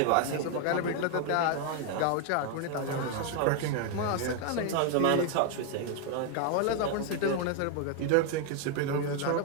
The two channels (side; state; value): both; different; correlation 0.01